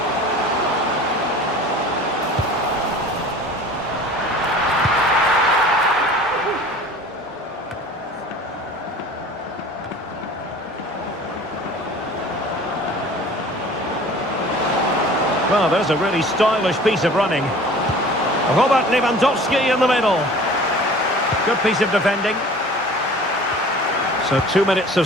Well, there's a really stylish piece of running. Robert Lewandowski in the middle. Good piece of defending. So 2 minutes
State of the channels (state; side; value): normal; both; correlation 0.44